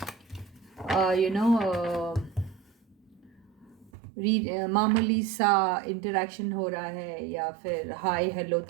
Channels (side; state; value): left; drops out; at 3.9 s